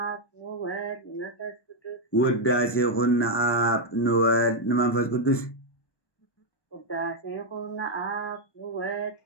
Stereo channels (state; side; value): late; right; 1.2 ms